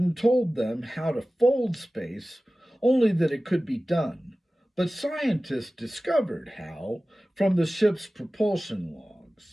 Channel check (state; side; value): normal; both; correlation 0.96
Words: told them how to fold space, only that it could be done, but scientists discovered how from the ship's propulsion